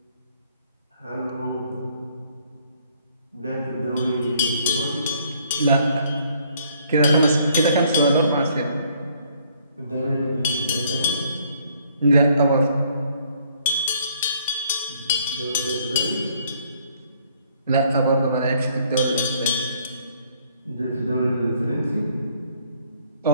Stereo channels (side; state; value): both; inverted; correlation -0.65